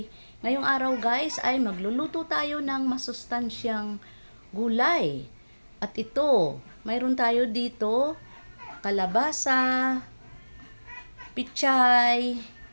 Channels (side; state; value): both; inverted; correlation -1.00